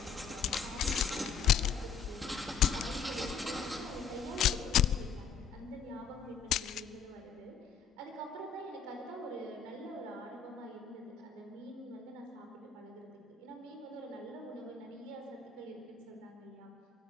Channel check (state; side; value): quieter; right; 6.5 dB